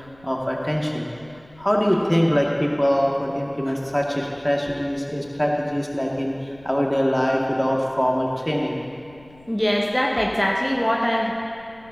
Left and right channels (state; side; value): noise; left; rumble, 26 dB below the sound